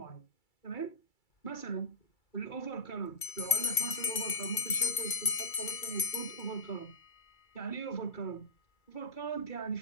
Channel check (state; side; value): late; right; 2.3 ms